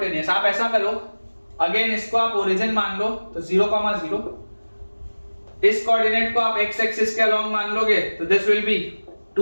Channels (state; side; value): inverted; both; correlation -1.00